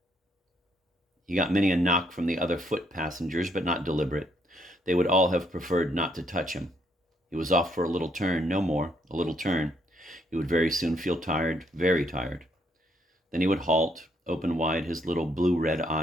He got many a knock from the other foot passengers, but not deliberate. They would all have preferred not to touch him. He was off for a little turn, no more, a little turn. He would very soon feel tired, very tired. Then he would halt, open wide his little blue-red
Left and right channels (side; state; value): both; normal; correlation 0.72